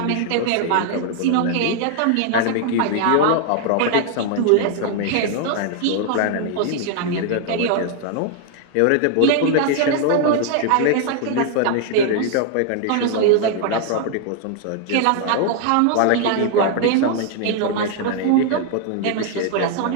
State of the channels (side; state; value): both; different; correlation 0.00